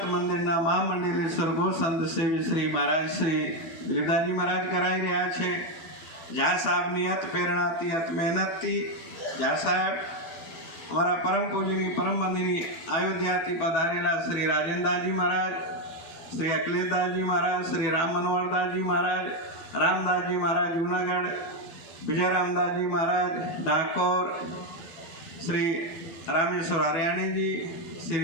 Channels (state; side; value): late; right; 12 ms